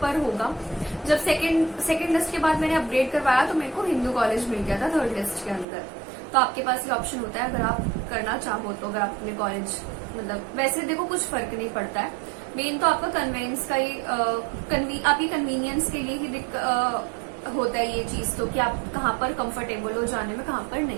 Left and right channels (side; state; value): left; drops out; at 5.7 s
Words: पर होगा। जब सेकंड लिस्ट के बाद मैंने अपग्रेड करवाया तो मेरे को हिंदू कॉलेज मिल गया था 3rd लिस्ट के अंदर। तो आपके पास ये ऑप्शन होता है अगर आप करना चाहो तो, अगर आप अपने कॉलेज, मतलब वैसे देखो कुछ फर्क नहीं पड़ता है, मेन तो आपका कन्वेंस का ही आपकी कन्वीनियंस के लिए ही होता है ये चीज, तो कि आप कहाँ पर कंफर्टेबल हो जाने में, कहाँ पर